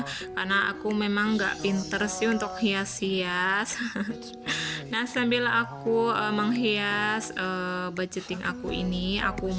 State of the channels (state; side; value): identical; both; correlation 1.00